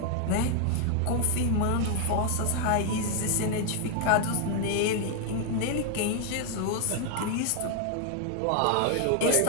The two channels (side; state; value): both; different; correlation 0.00